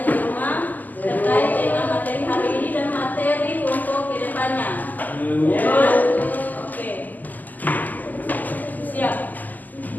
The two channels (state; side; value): late; right; 0.083 ms